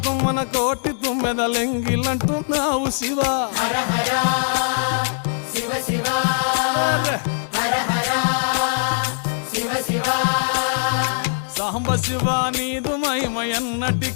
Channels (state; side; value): silent; right; 65 dB below the other